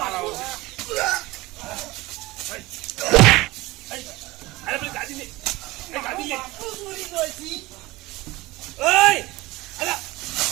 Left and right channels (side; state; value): left; quieter; 20.3 dB